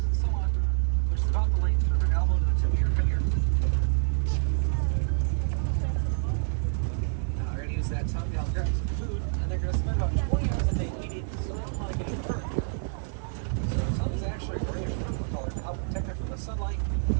and so on, which is about the length from their elbow to the tip of your finger. Now they're going to use that tongue to help grab some food, and they're going to spend about 20 hours a day eating, so they don't want to get hurt. So their tongue is actually a grayish purple color to help protect it from the sunlight,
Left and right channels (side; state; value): left; silent; digital silence